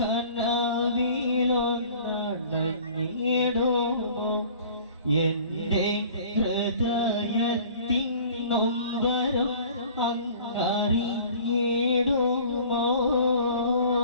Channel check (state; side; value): inverted; both; correlation -0.48